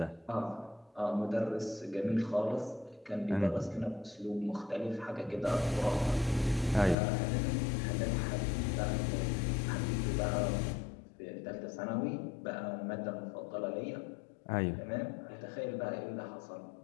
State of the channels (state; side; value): drops out; right; at 7.0 s